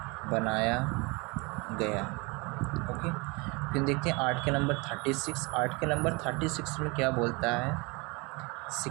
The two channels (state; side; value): quieter; left; 27.6 dB